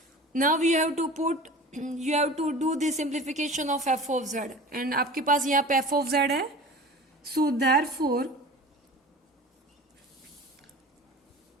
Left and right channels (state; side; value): normal; both; correlation 0.38